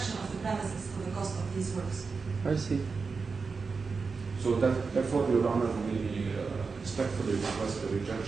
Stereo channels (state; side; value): quieter; left; 4.8 dB